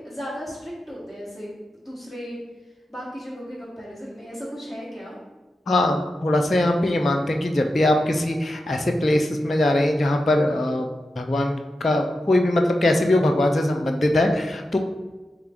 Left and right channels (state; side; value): normal; both; correlation 0.90